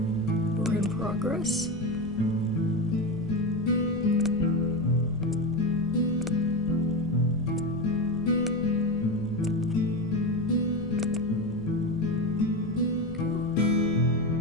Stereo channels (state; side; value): noise; left; rumble, 16 dB below the sound